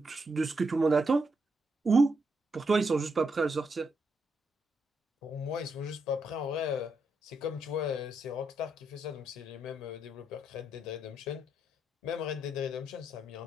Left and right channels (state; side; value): normal; both; correlation 0.80